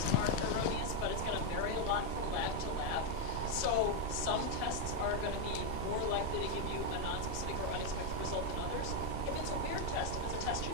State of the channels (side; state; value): right; late; 2.7 ms